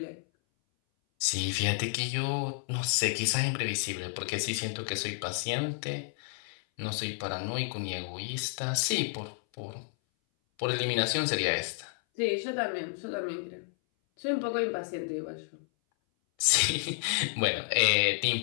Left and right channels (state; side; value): silent; right; 57 dB below the other